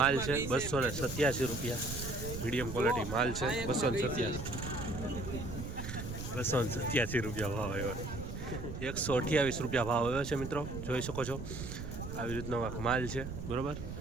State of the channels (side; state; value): right; noise; rumble, 7 dB below the sound